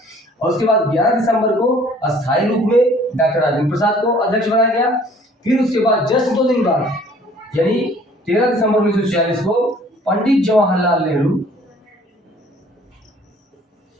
और उसके बाद 11 दिसंबर को अस्थायी रूप में डॉक्टर राजेंद्र प्रसाद को अध्यक्ष बनाया गया। फिर उसके बाद जस्ट 2 दिन बाद यानी 13 दिसंबर 1946 को पंडित जवाहरलाल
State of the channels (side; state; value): both; normal; correlation 0.55